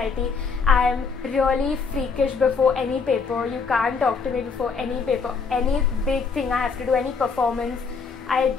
I'm really freakish before any paper. You can't talk to me before any paper. Any big thing I have to do, any performance, I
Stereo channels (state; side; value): quieter; right; 5.2 dB